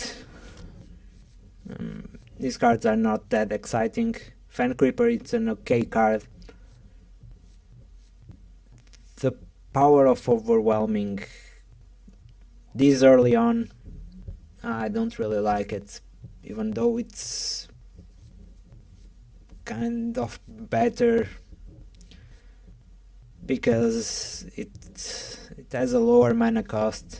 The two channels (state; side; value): identical; both; correlation 1.00